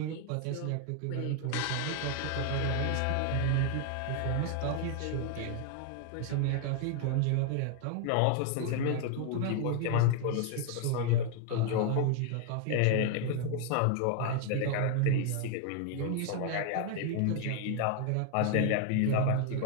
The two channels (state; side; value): different; both; correlation 0.00